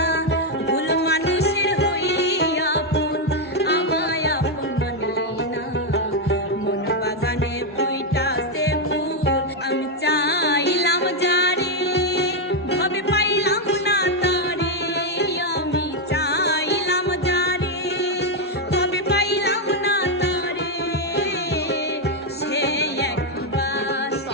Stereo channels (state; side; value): normal; both; correlation 0.03